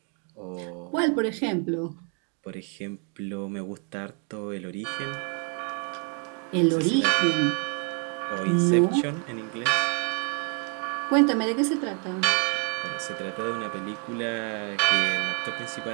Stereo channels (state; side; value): quieter; left; 39.4 dB